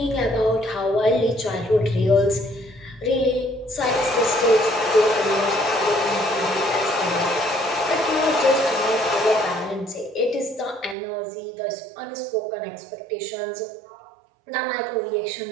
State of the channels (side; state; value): left; drops out; at 11.0 s